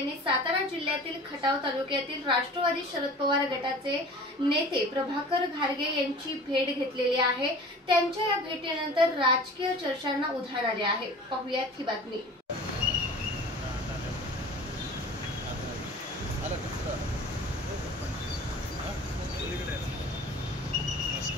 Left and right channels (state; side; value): normal; both; correlation 0.42